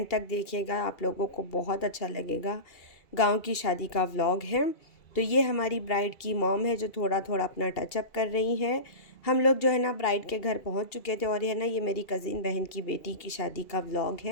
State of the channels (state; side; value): late; right; 2.3 ms